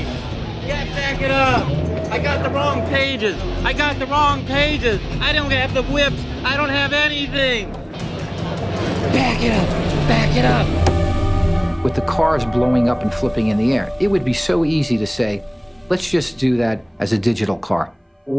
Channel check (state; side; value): identical; both; correlation 1.00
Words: Yeah, back it up. I got the wrong pages. I got the wrong pages. I don't have the whips. I don't have anything. Back it up. Back it up. With the cars blowing up and flipping in the air, it would be so easy to say, let's just do that as a digital car.